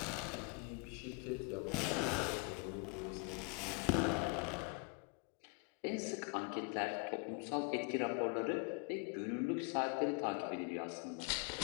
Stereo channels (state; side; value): quieter; right; 33.5 dB